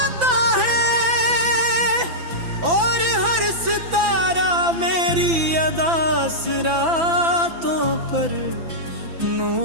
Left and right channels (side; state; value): left; late; 6.0 ms